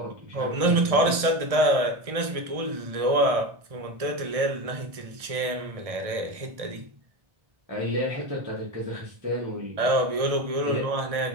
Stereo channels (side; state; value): left; late; 1.6 ms